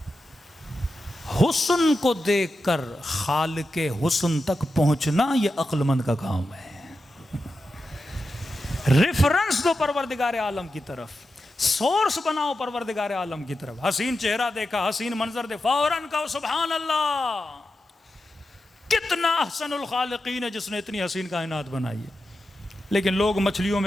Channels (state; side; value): normal; both; correlation 0.90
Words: حسن کو دیکھ کر خالق حسن تک پہنچنا یہ عقل مند کا کام ہے۔ ریفرنس دو پروردگار عالم کی طرف، سورس بناؤ پروردگار عالم کی طرف۔ حسین چہرہ دیکھا، حسین منظر دیکھا، فوراً کہو سبحان اللہ، کتنا احسن الخالقین ہے جس نے اتنی حسین کائنات بنائی ہے۔ لیکن لوگ مچھلیوں